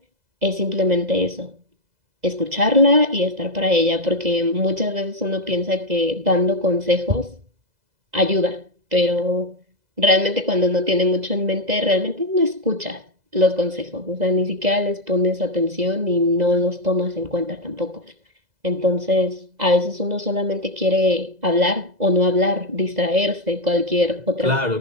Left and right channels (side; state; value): left; late; 2.0 ms